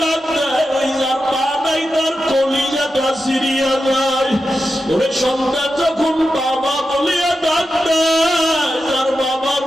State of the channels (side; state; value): both; normal; correlation 0.90